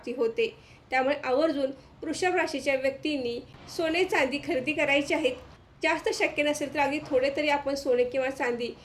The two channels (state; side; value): identical; both; correlation 1.00